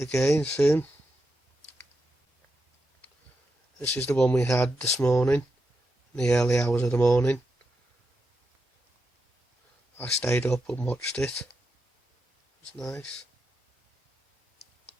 soon. This is the one we had this morning, in the early hours of the morning. I stayed up and watched it. It was nice.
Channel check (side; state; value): both; normal; correlation 0.86